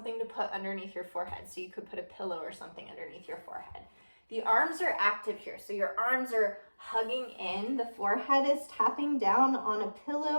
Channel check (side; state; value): both; inverted; correlation -1.00